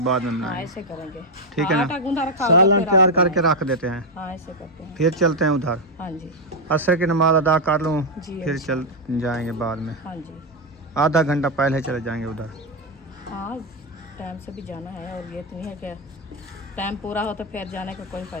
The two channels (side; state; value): both; normal; correlation 0.03